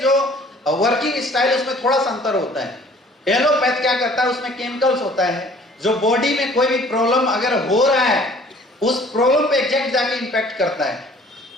जो वर्किंग स्टाइल उसमें थोड़ा सा अंतर होता है। एलोपैथ क्या करता है, उसमें केमिकल्स होता है जो बॉडी में कोई भी प्रॉब्लम अगर हो रहा है उस प्रॉब्लम पे एग्जैक्ट जाके इंपैक्ट करता है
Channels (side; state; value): both; normal; correlation 0.54